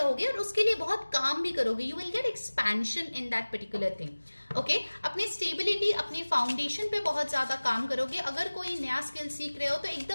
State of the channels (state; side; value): inverted; both; correlation -1.00